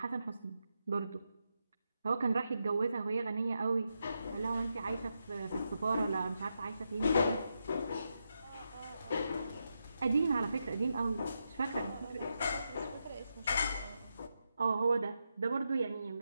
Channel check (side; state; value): both; inverted; correlation -0.85